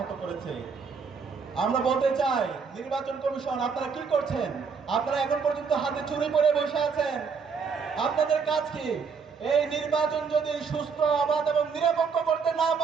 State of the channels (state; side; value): quieter; left; 5.6 dB